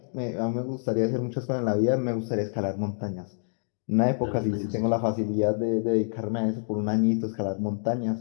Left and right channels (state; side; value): silent; right; digital silence